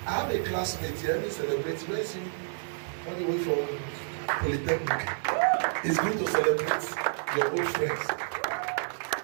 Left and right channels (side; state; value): left; silent; digital silence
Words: I have a classmate here, he celebrates. Where is he? On the way from Polytechnic. It's good to celebrate your old friends.